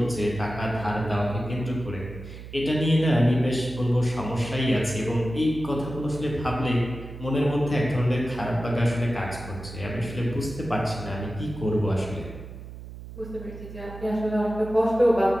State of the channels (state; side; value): noise; right; hum, 13 dB below the sound